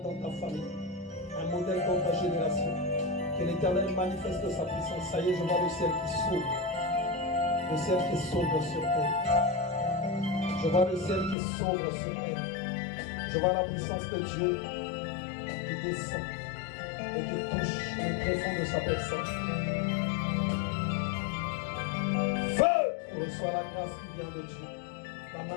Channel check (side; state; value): right; drops out; at 11.4 s